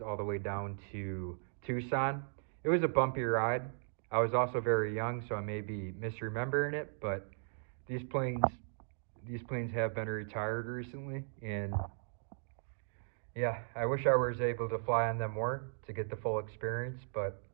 the way down to Tucson. It was a bumpy ride. I was also very young, so I may be misremembering it, but these planes have been retired recently, and yeah, I wish I was able to fly on them more to get the full experience, but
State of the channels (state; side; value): silent; left; digital silence